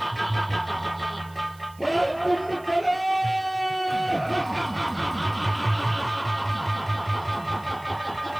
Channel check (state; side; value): noise; right; hiss, 26 dB below the sound